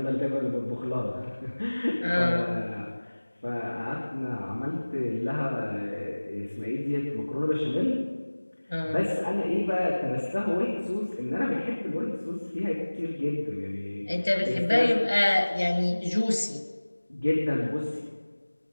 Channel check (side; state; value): both; inverted; correlation -1.00